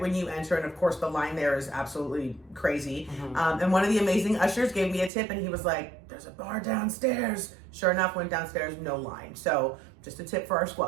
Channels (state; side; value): drops out; left; at 5.1 s